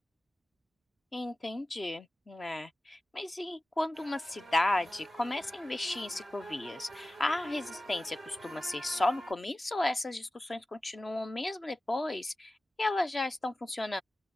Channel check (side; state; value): both; normal; correlation 0.96